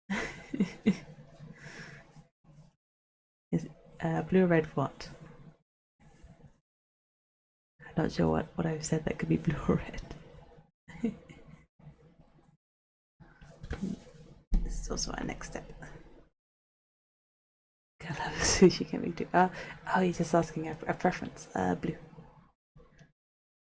Is blue or red what? I'm not sure what I've said that could be blue or red. This is also our next step. Colour of sushi can be too. Oh, you're just asking a preference. Blue.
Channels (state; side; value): identical; both; correlation 1.00